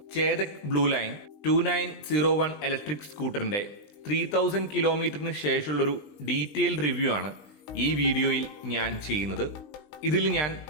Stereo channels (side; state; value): right; late; 20 ms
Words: ചേതക് ബ്ലൂ ലൈൻ 2901 ഇലക്ട്രിക് സ്കൂട്ടറിന്റെ 3000 കിലോമീറ്ററിന് ശേഷമുള്ളൊരു ഡീറ്റെയിൽഡ് റിവ്യൂ ആണ് ഈ വീഡിയോയിൽ ഞാൻ ചെയ്യുന്നത്. ഇതിൽ ഞാൻ